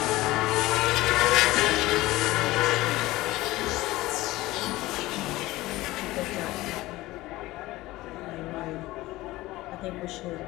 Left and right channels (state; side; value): quieter; right; 18.4 dB